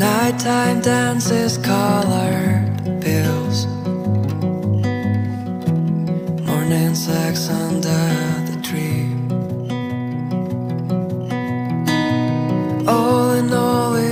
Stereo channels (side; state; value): both; identical; correlation 1.00